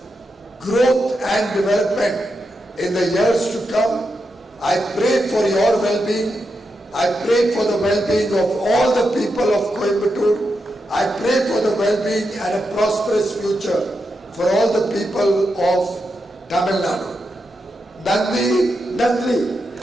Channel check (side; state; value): both; normal; correlation 0.86